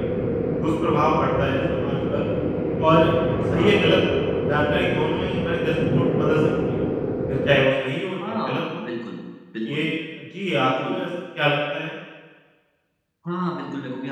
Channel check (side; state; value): both; identical; correlation 1.00